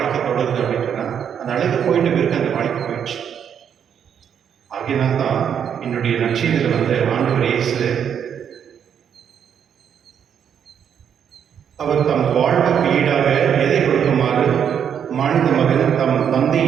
தொடருது அப்படின்னு சொன்னால் அந்த அழகு போயிட்டு பிறகு அந்த வாழ்க்கை போயிடுச்சு. ஆகையினால்தான் என்னுடைய நட்சத்திரத்தில் வந்து ஆண்டவர் இயேசு அவர் தம் வாழ்வுக்கு ஈடாக எதை கொடுக்குமாறு மனித மகன் தம்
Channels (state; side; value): quieter; left; 8.3 dB